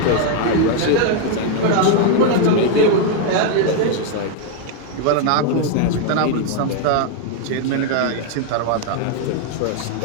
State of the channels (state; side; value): different; both; correlation 0.00